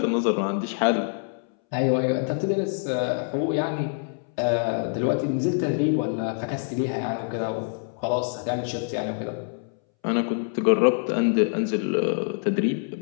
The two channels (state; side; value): silent; right; 61 dB below the other